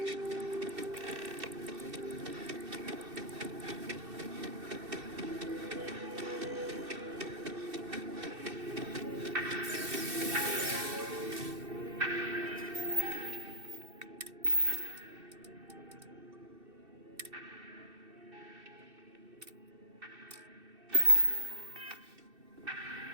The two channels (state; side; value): late; left; 2.6 ms